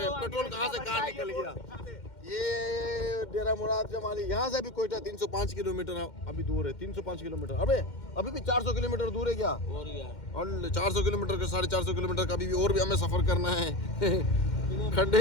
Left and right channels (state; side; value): late; right; 2.1 ms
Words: पेट्रोल कहाँ से कहाँ निकल गया। ये डेरा मुराद जमाली यहाँ से भी कोयटा 305 किलोमीटर अभी दूर है। 305 किलोमीटर अभी भी 400 किलोमीटर दूर है क्या? और 400 किलोमीटर का 450 किलोमीटर का अभी और भी हमें सफर करना है। खड्डे